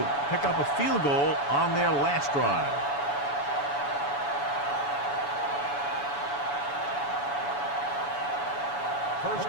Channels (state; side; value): late; right; 7.0 ms